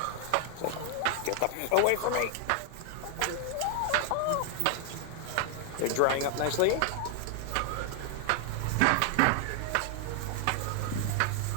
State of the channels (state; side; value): different; both; correlation 0.00